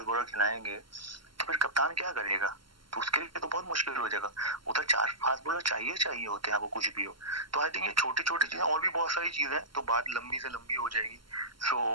बॉलर खिलाएंगे तो फिर कप्तान क्या करेगा, तो उसके लिए तो बहुत मुश्किल हो जाएगा। उधर 4 फास्ट बॉलर चाहिए होते हैं आपको कुछ भी हो। तो आई थिंक ये छोटी छोटी चीजें, और भी बहुत सारी चीजें, तो बात लंबी से लंबी हो जाएगी।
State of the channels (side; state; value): left; late; 0.73 ms